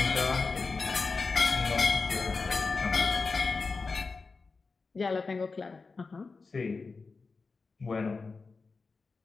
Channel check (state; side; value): quieter; right; 4.3 dB